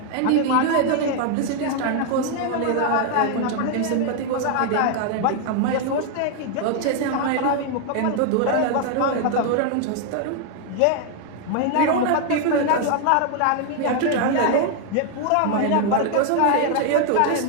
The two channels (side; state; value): both; different; correlation 0.00